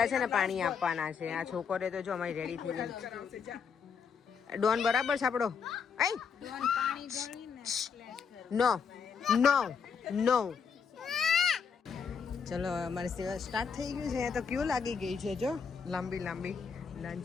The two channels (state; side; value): quieter; right; 6.3 dB